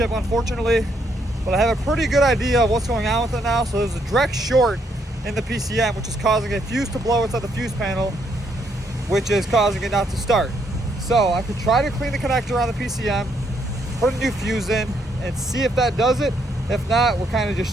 unfortunately. But I have a pretty good idea of what's going on with it now. So there's a direct short in the PCM, which is causing a fuse to blow inside the fuse panel, which is causing it not to start. So I could try to clean the connector on the PCM, put a new fuse in, and see if that does it. If not, we're kind of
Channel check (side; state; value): both; normal; correlation 0.73